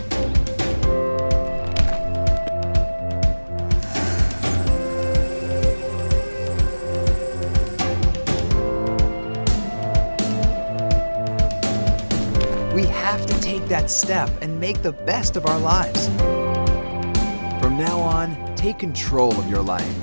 We have to take that step and make the best of our lives. From now on, take control of your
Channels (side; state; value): both; inverted; correlation -1.00